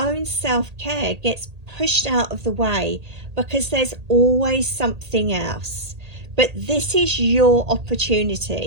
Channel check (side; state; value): left; late; 1.8 ms